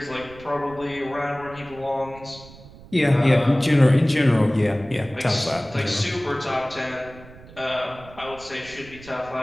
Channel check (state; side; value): noise; right; rumble, 19 dB below the sound